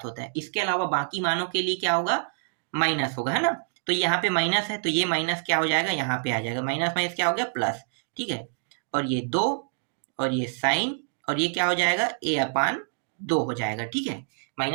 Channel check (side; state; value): left; silent; digital silence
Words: होता है। इसके अलावा बाकी मानों के लिए क्या होगा, माइनस होगा, है ना। तो यहाँ पे माइनस है तो ये माइनस क्या हो जाएगा, यहाँ पे आ जाएगा, माइनस माइनस क्या हो गया, प्लस। ठीक है, और ये 2 और ये साइन और ये क्या हो जाएगा, a अपान 2 हो जाएगा। ठीक है,